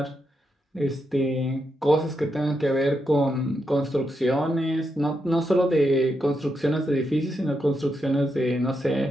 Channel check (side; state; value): both; normal; correlation 0.83